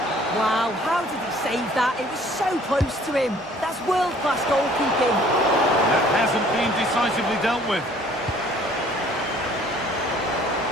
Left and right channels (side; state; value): both; normal; correlation 0.56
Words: Wow, how did he save that? It was so close to him. That's world-class goalkeeping. That hasn't been decisively dealt with.